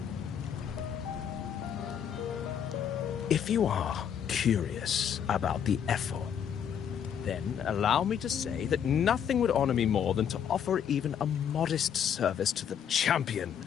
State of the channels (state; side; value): quieter; right; 8.5 dB